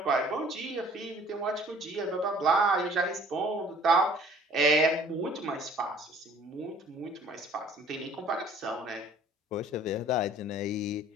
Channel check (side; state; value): both; normal; correlation 0.53